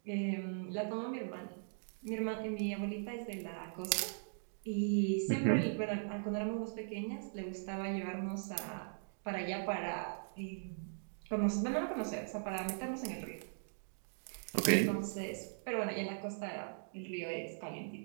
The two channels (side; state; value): left; silent; digital silence